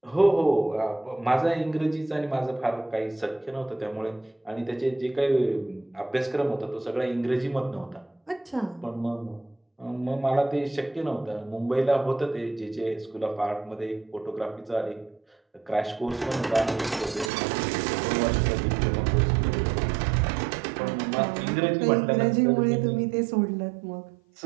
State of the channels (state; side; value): drops out; left; at 17.3 s